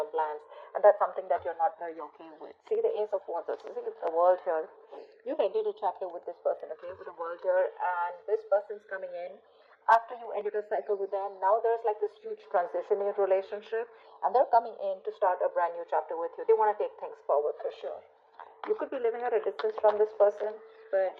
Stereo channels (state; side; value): identical; both; correlation 1.00